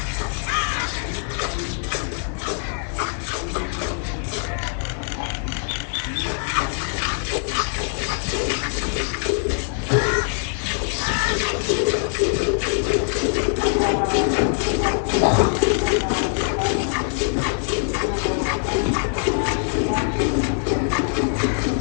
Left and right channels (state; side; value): silent; right; 60 dB below the other